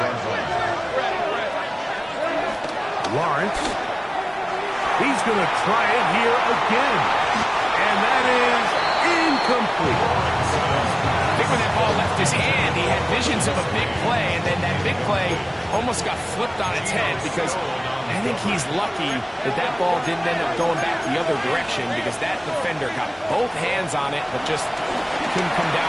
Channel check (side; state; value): both; identical; correlation 1.00